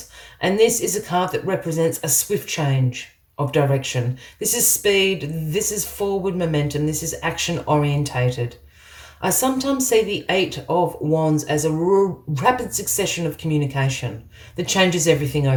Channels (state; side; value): identical; both; correlation 1.00